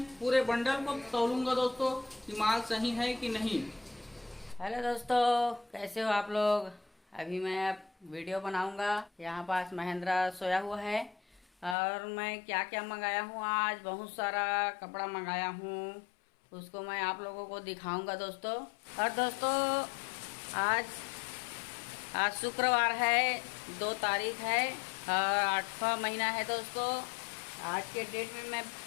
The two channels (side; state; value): right; drops out; at 11.8 s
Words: पूरे बंडल को तौलूंगा दोस्तों कि माल सही है कि नहीं। हेलो दोस्तों, कैसे हो आप लोग। अभी मैं अब वीडियो बनाऊंगा। यहाँ पास महेंद्रा सोया हुआ है और मैं क्या क्या मंगाया हूँ। आज बहुत सारा कपड़ा मंगाया हूँ, उसको मैं आप लोगों को दिखाऊंगा दोस्तों। और दोस्तों आज आज शुक्रवार है, 2 तारीख है और 8वां महीना है दोस्तों। आज के डेट में मैं